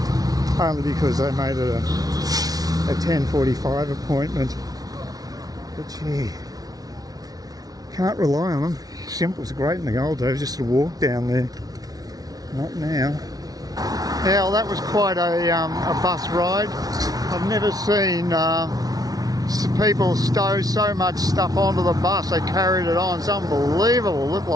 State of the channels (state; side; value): late; left; 0.18 ms